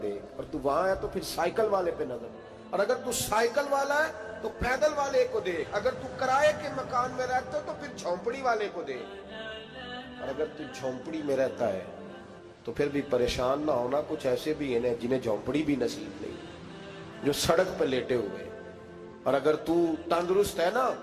دیکھ، اور تو وہاں ہے تو پھر سائیکل والے پہ نظر. اور اگر تو سائیکل والا ہے تو پیدل والے کو دیکھ. اگر تو کرائے کے مکان میں رہتا ہے تو پھر جھونپڑی والے کو دیکھ. اور اگر تو جھونپڑی میں رہتا ہے تو پھر بھی پریشان نہ ہونا. کچھ ایسے بھی ہیں جنہیں جھونپڑی بھی نصیب نہیں، جو سڑک پہ لیٹے ہوئے. اور اگر تو تندرست ہے نا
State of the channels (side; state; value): both; identical; correlation 1.00